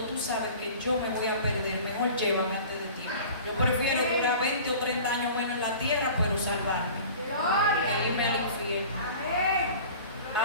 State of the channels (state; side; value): inverted; both; correlation -0.41